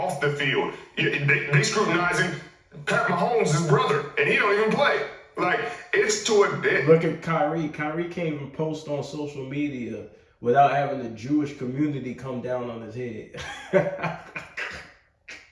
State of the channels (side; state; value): both; identical; correlation 1.00